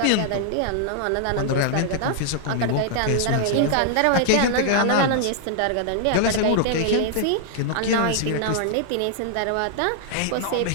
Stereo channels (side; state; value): both; different; correlation -0.01